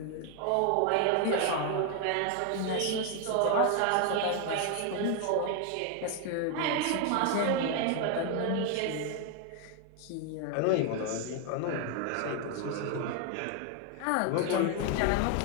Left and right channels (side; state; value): both; different; correlation 0.01